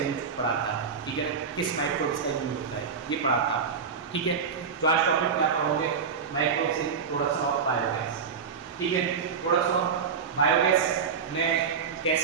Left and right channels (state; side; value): quieter; left; 6.1 dB